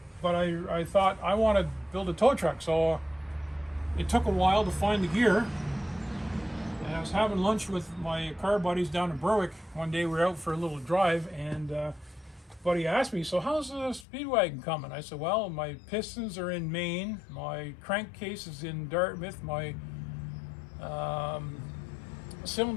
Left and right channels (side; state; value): right; drops out; at 14.1 s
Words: I thought I want to build a tow truck. So it took a while to find the gear. And I was having lunch with my car buddies down in Berwick. One day we were out for a little drive, and buddy asked me, "So how's the Speedwagon coming?" I said, "Well, my pistons are in Maine, my crankcase is in Dartmouth, my